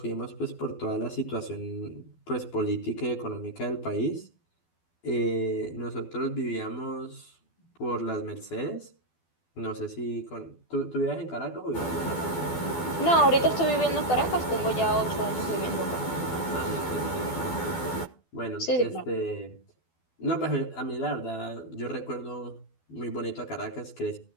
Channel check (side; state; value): right; late; 12 ms